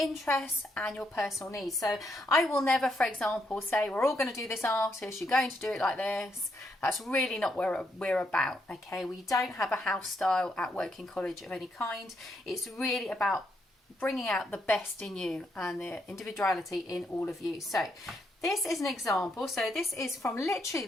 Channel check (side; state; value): both; normal; correlation 0.77